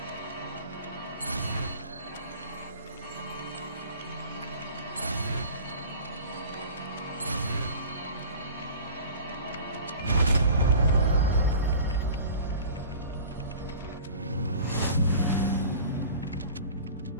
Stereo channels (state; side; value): inverted; both; correlation -0.41